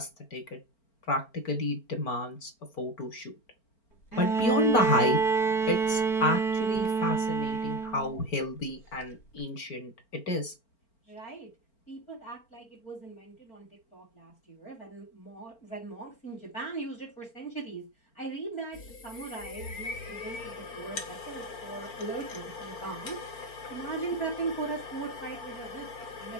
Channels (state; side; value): late; right; 4.4 ms